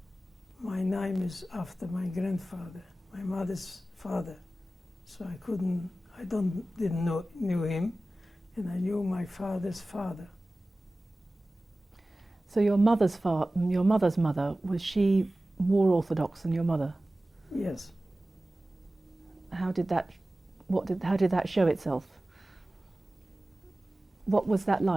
my name is after my grandfather, my mother's father, so didn't know him, and I knew my father's father. So your mother's mother, was she more orthodox than your mother? Yes. How did that show itself? What was that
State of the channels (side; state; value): both; normal; correlation 0.96